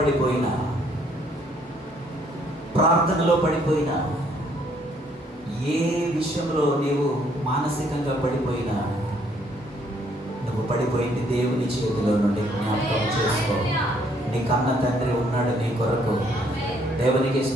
ప్రార్థనలో పడిపోయినా, ఏ విషయంలో నీవు మానసికంగా పడిపోయినా, నువ్వు పడిపోయింది దేవుని చేతిలో నుండి జ్ఞాపకం చేసుకో. నీ కన్న తండ్రి ఉన్నాడు నీ కొరకు. దేవునికి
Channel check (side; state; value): both; normal; correlation 0.66